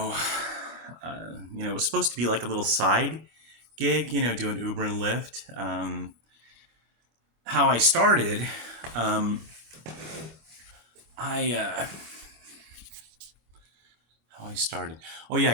it was supposed to be like a little side gig, doing Uber and Lyft. How I started, um, I how I started. Oh yeah,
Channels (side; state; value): left; late; 26 ms